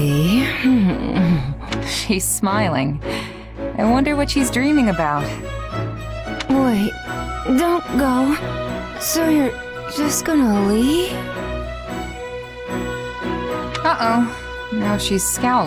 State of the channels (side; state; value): both; identical; correlation 1.00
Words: She's smiling. I wonder what she's dreaming about. Wait, don't go. So you're just gonna leave? Uh-oh. Now she's